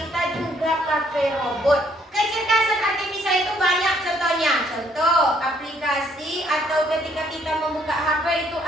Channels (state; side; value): normal; both; correlation 0.67